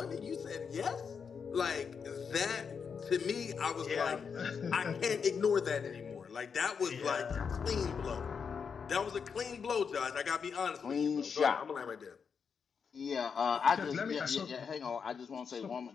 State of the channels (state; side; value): quieter; right; 6.2 dB